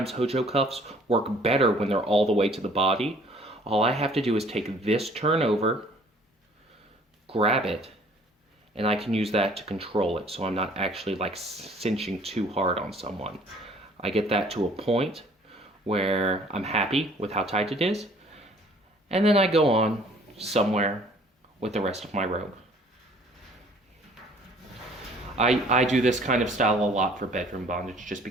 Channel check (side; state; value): both; normal; correlation 0.55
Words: Hojo cuffs work better when they're all the way to the body. All I have to do is take this turn over, grab it, and I can use that to control it, so I'm not actually like cinching too hard on someone. I get that to a point where I'm happy with how tight it is, and then I go on somewhere with the rest of my rope. I do this kind of style a lot for bedroom bondage just